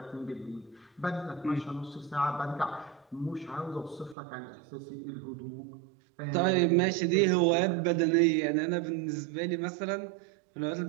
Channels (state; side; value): drops out; left; at 4.2 s